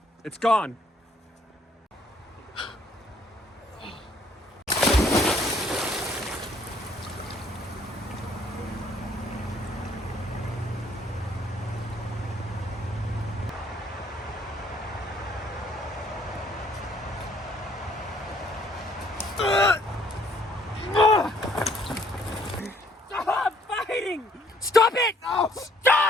It's gone. Stop fighting! Stop it!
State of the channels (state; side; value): normal; both; correlation 0.64